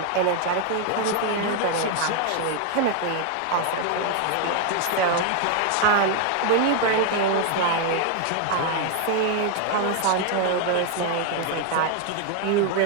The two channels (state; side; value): different; both; correlation 0.00